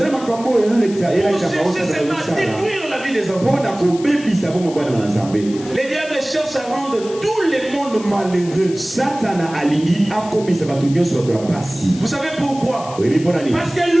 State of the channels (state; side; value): noise; left; hiss, 17 dB below the sound